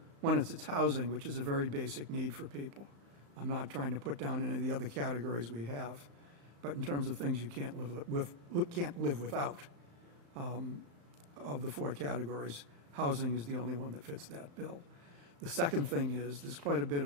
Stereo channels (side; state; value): left; late; 35 ms